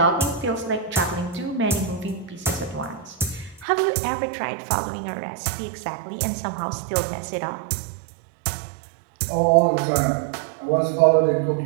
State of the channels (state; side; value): drops out; left; at 3.7 s